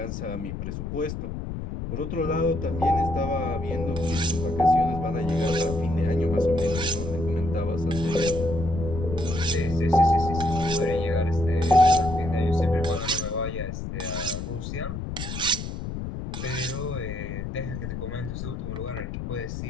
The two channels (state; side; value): noise; left; rumble, 6 dB below the sound